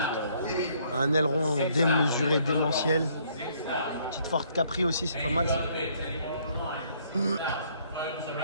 Un aileron démesuré, démentiel. Petite Ford Capri aussi, c'est pas mal ça. Une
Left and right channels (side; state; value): both; inverted; correlation -0.65